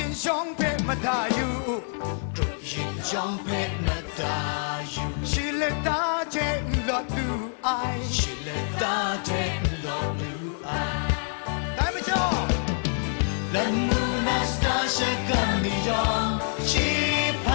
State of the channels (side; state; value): right; silent; 61 dB below the other